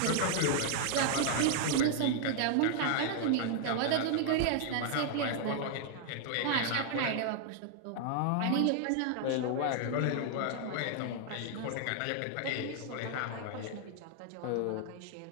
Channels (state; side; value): different; both; correlation 0.00